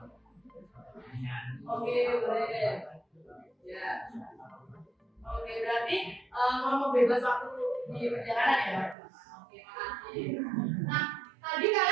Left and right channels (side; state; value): left; drops out; at 9.0 s